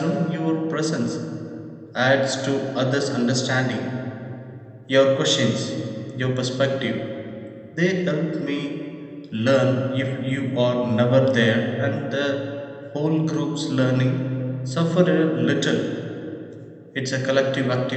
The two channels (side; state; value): both; identical; correlation 1.00